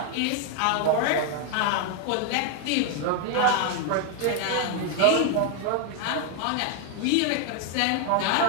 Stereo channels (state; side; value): different; both; correlation 0.01